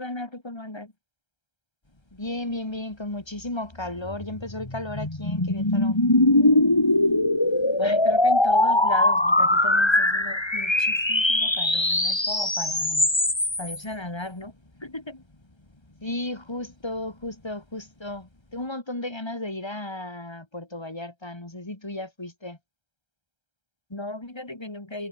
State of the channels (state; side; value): late; right; 1.3 ms